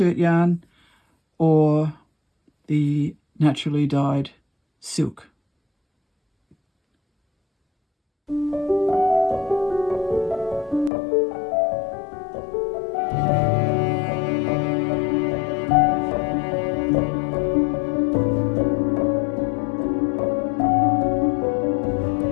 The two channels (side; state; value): right; drops out; at 10.9 s